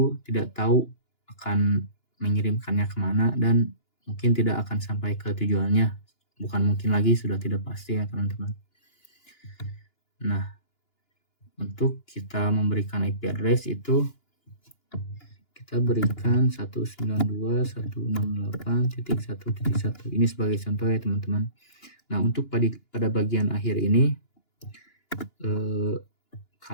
tidak tahu akan mengirimkannya kemana dan mungkin tidak akan sampai ke tujuannya. Bukan mungkin lagi, sudah tidak pasti ya teman-teman. Nah, untuk kita memberikan IP address itu kita berikan 192.168.1.1. Ini sebagai contoh ya teman-teman. Nah, untuk pada bagian akhir ini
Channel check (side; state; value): right; late; 2.9 ms